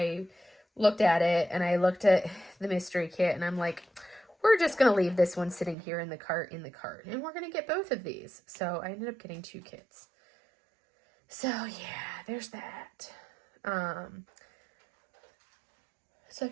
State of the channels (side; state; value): left; drops out; at 5.8 s